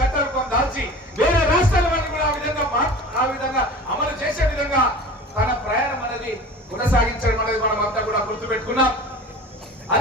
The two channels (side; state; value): both; normal; correlation 0.38